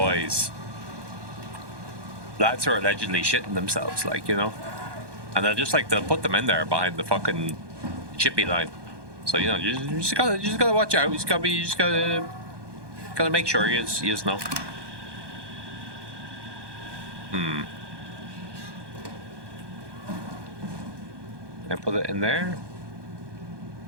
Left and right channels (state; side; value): late; left; 1.2 ms